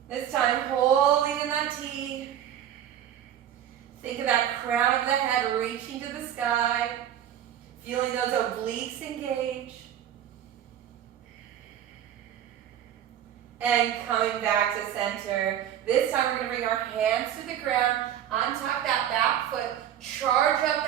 This time, holding in that T. Think of that crown of the head reaching to the sky. Feeling those obliques engage. And coming back to center. This time we're going to bring our hands to the ground, untuck that back foot, Charge up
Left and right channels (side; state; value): left; quieter; 10.4 dB